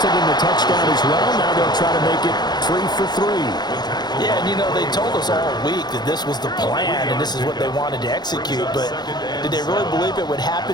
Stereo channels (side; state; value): right; late; 0.20 ms